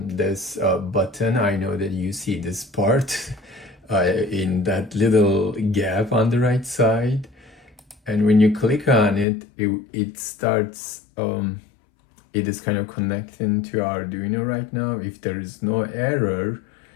this button. I know that you see this part in that little gap on the right side. And when you click on it, it starts, it is kind of connecting to Arduino right now. If there is no error,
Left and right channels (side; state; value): right; drops out; at 9.2 s